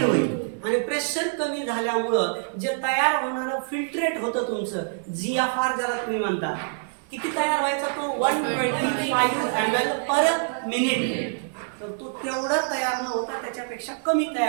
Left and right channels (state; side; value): silent; left; digital silence